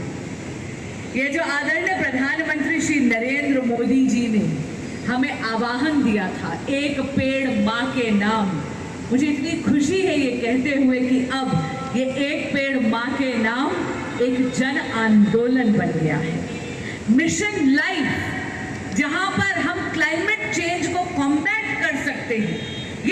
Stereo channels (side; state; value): both; identical; correlation 1.00